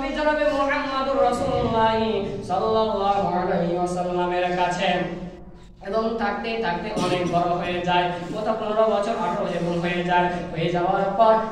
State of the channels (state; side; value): identical; both; correlation 1.00